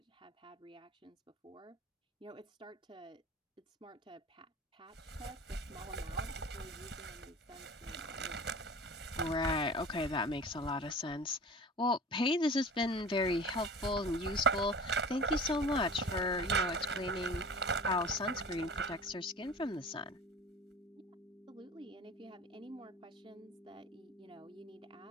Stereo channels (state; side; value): normal; both; correlation 0.38